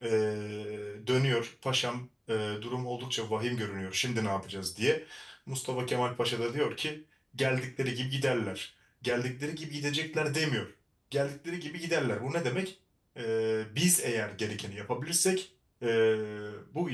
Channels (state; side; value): identical; both; correlation 1.00